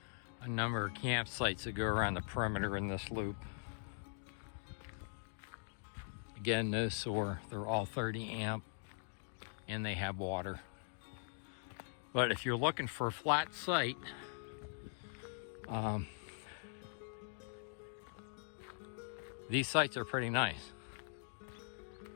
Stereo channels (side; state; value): right; silent; digital silence